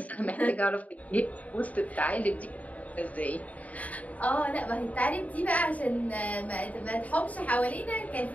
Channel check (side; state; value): right; late; 0.071 ms